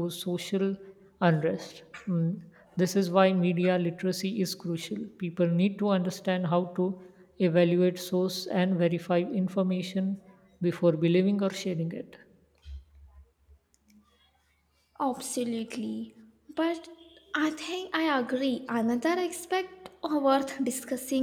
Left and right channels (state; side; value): identical; both; correlation 1.00